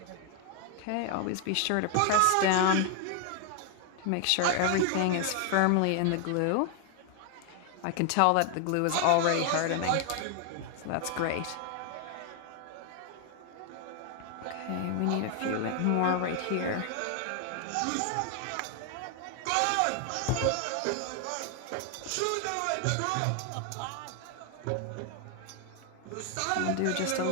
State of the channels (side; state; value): both; different; correlation 0.00